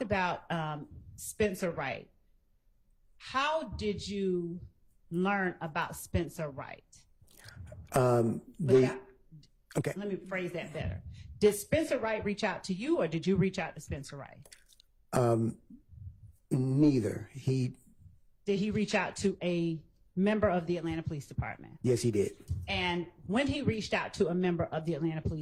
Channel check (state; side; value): identical; both; correlation 1.00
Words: about Spencer Wright, how did you learn about Spencer Wright? Okay. Let me phrase that better. Did Spencer Wright reach out to you, or did you reach out to Spencer Wright? Neither. Did he reach out to a member of the Atlanta Police Department? Yes, he did. And when he reached out to a member of the Atlanta